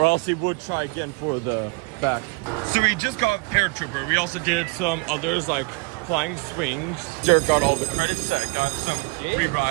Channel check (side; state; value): left; quieter; 29.3 dB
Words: else we would try again for the back. So we just got Paratrooper. We also did some others like Flying Swings. Jared got all the credits. I got some